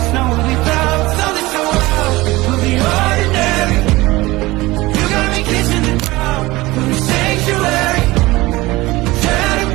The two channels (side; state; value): left; quieter; 20.1 dB